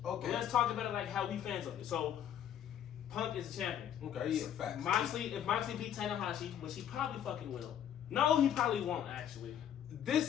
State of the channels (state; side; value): quieter; right; 9.9 dB